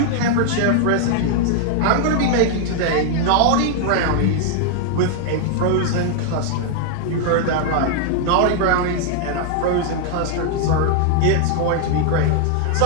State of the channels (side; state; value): both; different; correlation 0.00